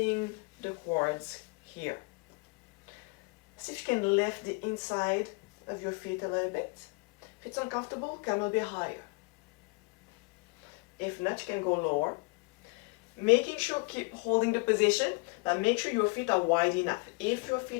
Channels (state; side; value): quieter; right; 28.6 dB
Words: the quads here. See if you can lift the inside of your feet a little bit. If it's uncomfortable, come a little bit higher. If not, you can go lower. Making sure keep holding the position, but make sure your feet are wide enough. If your